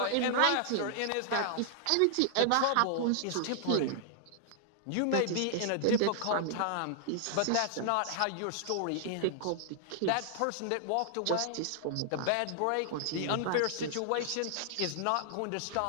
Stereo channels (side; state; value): both; different; correlation -0.01